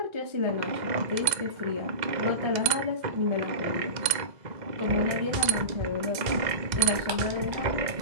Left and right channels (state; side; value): late; left; 2.0 ms